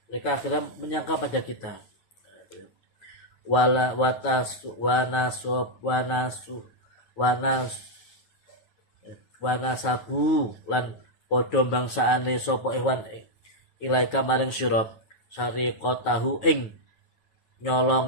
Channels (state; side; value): late; right; 9.2 ms